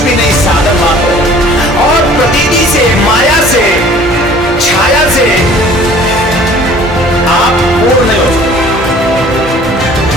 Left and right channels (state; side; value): normal; both; correlation 0.51